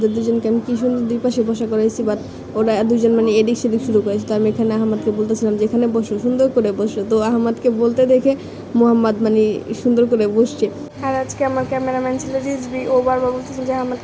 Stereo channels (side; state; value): both; identical; correlation 1.00